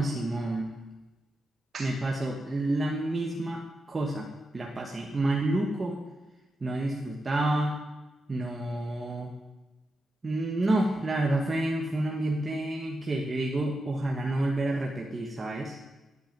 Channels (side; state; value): both; normal; correlation 0.88